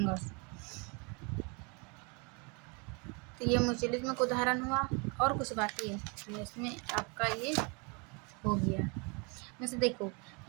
तो ये म्यूचुअलिज्म का उदाहरण हुआ। और कुछ बाकी है इसमें, आपका ये हो गया। वैसे देखो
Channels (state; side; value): quieter; left; 31.7 dB